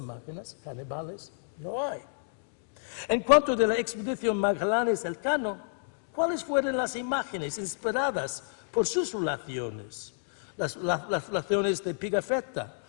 canibales no hay. En cuanto a la expedición Magallanes-Elcano, ¿cuáles fueron las imágenes inspiradas por sus relaciones? Las relaciones de Pigafetta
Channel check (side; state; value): right; silent; digital silence